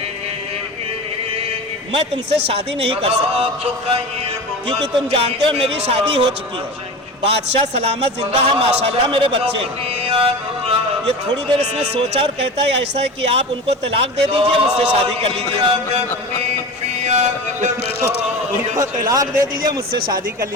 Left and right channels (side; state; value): both; normal; correlation 0.30